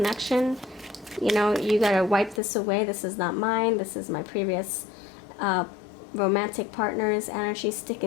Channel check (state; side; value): drops out; right; at 2.4 s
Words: You know, you gotta wipe this away. This is not mine. This is my previous romantic partner's energy